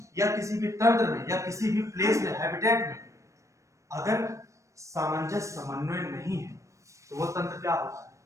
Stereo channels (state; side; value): late; left; 0.15 ms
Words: या किसी भी तंत्र में या किसी भी प्लेस में, हैबिटेट में अगर सामंजस्य, समन्वय नहीं है तो वो तंत्र क्या होता है?